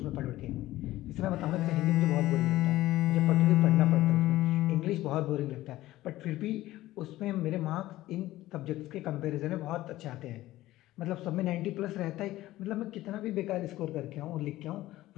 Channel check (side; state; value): right; quieter; 16.1 dB